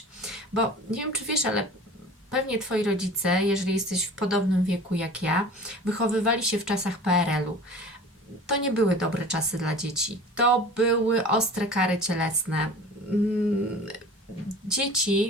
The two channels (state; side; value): normal; both; correlation 0.41